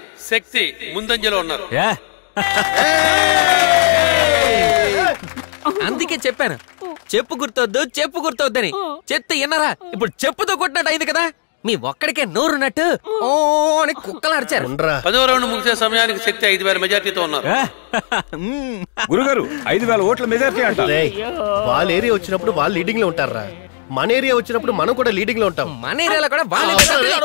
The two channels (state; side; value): silent; right; digital silence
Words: శక్తి ముందంజలో ఉన్నారు. అందుకే చెప్పాను చెప్పు గుర్తొద్దని. చెత్త విన్నరా? ఇప్పుడు చెప్పుతో కొట్టినట్టు అయింది కదా. మీ ఒక్కడికే నోరున్నట్టు ఓ అని కుక్కలు అరిచారు. 10వ రౌండ్ ముగిసే సమయానికి శక్తి 5,000 మెజార్టీతో ఉన్నారు. గురుగారు 5,000 ఓట్ల మెజార్టీ అంటారు. వాళ్ళ ఏరియా వచ్చినప్పుడు వాళ్ళు లీడింగ్ లో ఉంటారా? మన ఏరియా వచ్చినప్పుడు మనం కూడా లీడింగ్ లో ఉంటాం. మన ఏరియాలో కూడా